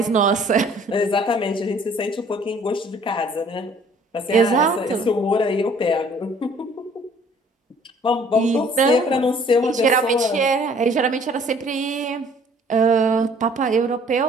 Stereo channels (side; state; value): both; normal; correlation 0.56